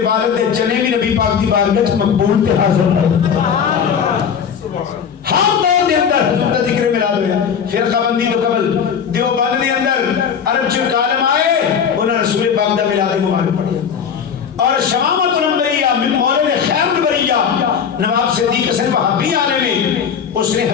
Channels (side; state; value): right; quieter; 7.3 dB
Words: والد دے چنے بھی نبی پاک دی بارگاہ مقبول تے حاضر ہے. ہر دور دے اندر حضور کا ذکر میلاد ہوا. فرقہ بندی تو قبل دیوبند دے اندر عرب چ عالم آئے انہوں رسول پاک دا میلاد مبارک پڑھیا. اور شمامت الانبیاء من مولوی خیر البریہ نواب صدیق حسن وہابی عالم میں اس نے